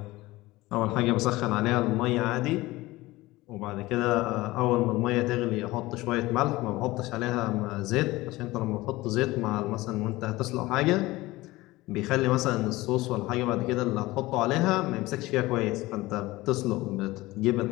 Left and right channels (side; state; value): right; quieter; 19.4 dB